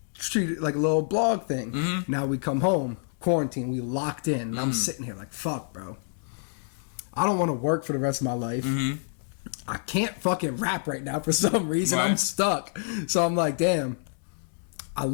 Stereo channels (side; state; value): right; silent; digital silence